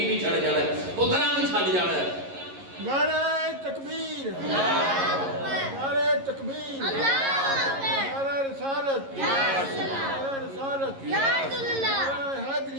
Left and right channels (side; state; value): left; late; 11 ms